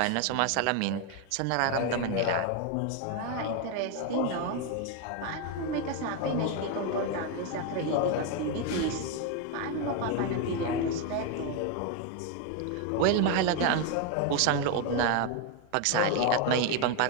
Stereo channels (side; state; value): both; different; correlation 0.01